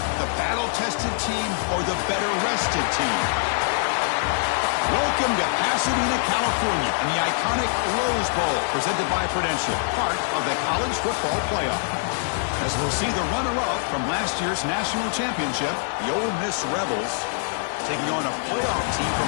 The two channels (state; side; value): silent; right; digital silence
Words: the battle-tested team or the better-rested team? Welcome to Pasadena, California, and the iconic Rose Bowl, presented by Prudential, part of the college football playoff. As we'll see the runner-up from last year's national championship, the Ole Miss Rebels, taking on a playoff team from